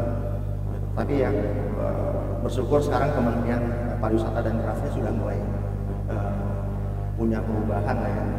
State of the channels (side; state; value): both; identical; correlation 1.00